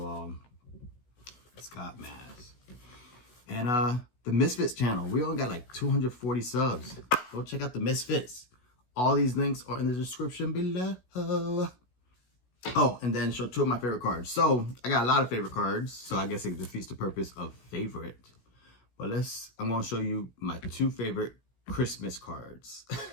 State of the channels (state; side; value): late; right; 16 ms